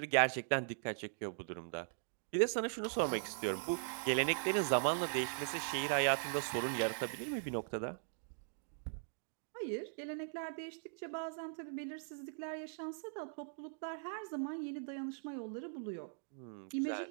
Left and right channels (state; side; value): silent; left; digital silence